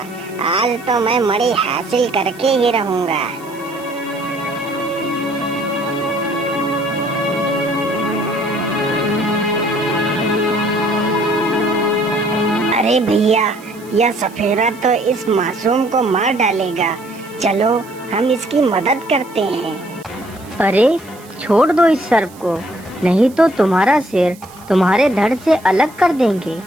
आज तो मैं मणि हासिल करके ही रहूंगा। अरे भैया, यह सफेरा तो इस मासूम को मार डालेगा। चलो हम इसकी मदद करते हैं। अरे छोड़ दो इस सर्प को, नहीं तो तुम्हारा सिर तुम्हारे धड़ से अलग कर देंगे।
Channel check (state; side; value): noise; right; hiss, 23 dB below the sound